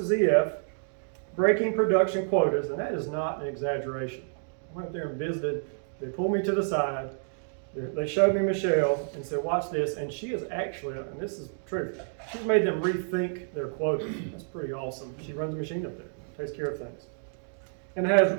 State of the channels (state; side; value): silent; left; digital silence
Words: EF, breaking production quotas, and that is not an exaggeration. I went up there and visited. They pulled me to the side. They showed me Michelle and said, watch this, and she is actually, and this is true, she's made them rethink their quotas. That's pretty awesome. She runs a machine up there, takes care of things, and has